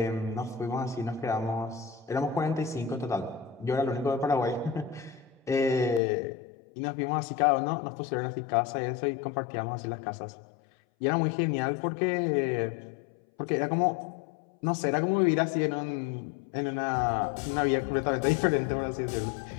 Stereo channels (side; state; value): right; drops out; at 6.0 s